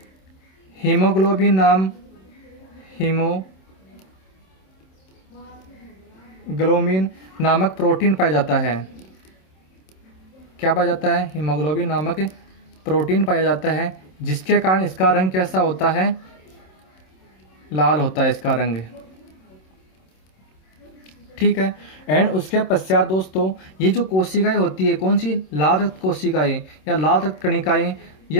हीमोग्लोबिन हीमोग्लोबिन नामक प्रोटीन पाया जाता है। क्या पाया जाता है? हीमोग्लोबिन नामक प्रोटीन पाया जाता है, जिसके कारण इसका रंग कैसा होता है? लाल होता है इसका रंग। ठीक है। एंड उसके पश्चात दोस्तों ये जो कोशिकाएं होती है, कौन सी? लाल रक्त कोशिकाएं या लाल रक्त कणिकाएं,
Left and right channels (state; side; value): late; right; 27 ms